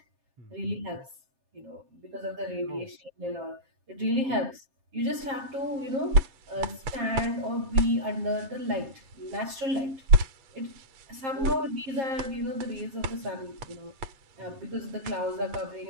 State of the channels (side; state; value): left; late; 7.5 ms